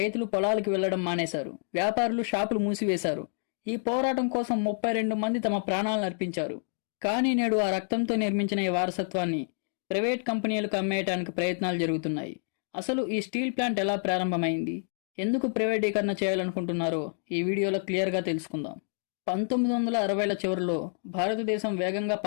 పొలాలకు వెళ్లడం మానేశారు. వ్యాపారులు షాపులు మూసివేశారు. ఈ పోరాటం కోసం 32 మంది తమ ప్రాణాలను అర్పించారు. కానీ నేడు ఆ రక్తంతో నిర్మించిన ఈ వారసత్వాన్ని ప్రైవేట్ కంపెనీలకు అమ్మేయడానికి ప్రయత్నాలు జరుగుతున్నాయి. అసలు ఈ స్టీల్ ప్లాంట్ ఎలా ప్రారంభమైంది, ఎందుకు ప్రైవేటీకరణ చేయాలనుకుంటున్నారో ఈ వీడియోలో క్లియర్గా తెలుసుకుందాం. 1960ల చివరిలో భారతదేశం వేగంగా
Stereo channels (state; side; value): silent; right; digital silence